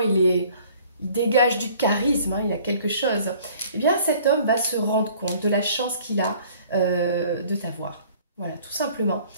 dégage du charisme, hein, il a quelque chose. Eh bien, cet homme va se rendre compte de la chance qu'il a de t'avoir. Voilà, tout simplement.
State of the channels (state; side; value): inverted; both; correlation -0.54